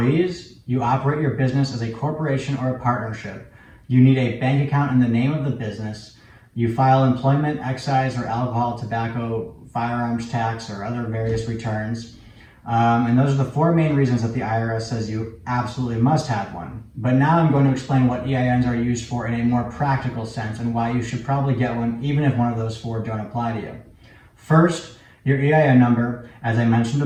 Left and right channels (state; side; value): identical; both; correlation 1.00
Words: you operate your business as a corporation or a partnership, you need a bank account in the name of the business, you file employment, excise, or alcohol, tobacco, firearms tax, or other various returns. And those are the four main reasons that the IRS says you absolutely must have one. But now I'm going to explain what EINs are used for in a more practical sense and why you should probably get one even if one of those four don't apply to you. First, your EIN number, as I mentioned